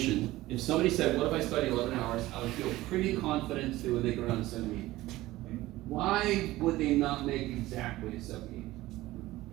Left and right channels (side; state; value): left; quieter; 17.3 dB